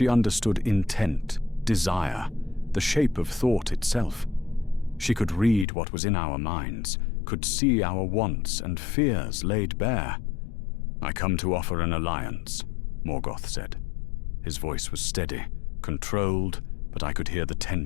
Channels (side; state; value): right; drops out; at 5.7 s